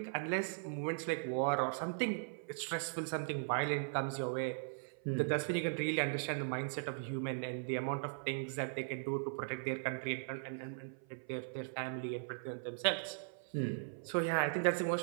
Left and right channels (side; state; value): left; silent; 52 dB below the other